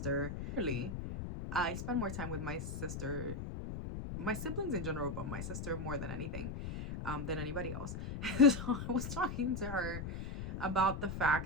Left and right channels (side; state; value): left; noise; rumble, 6 dB below the sound